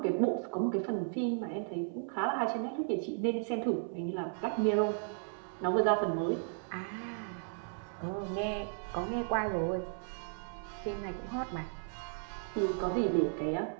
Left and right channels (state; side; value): silent; left; 54 dB below the other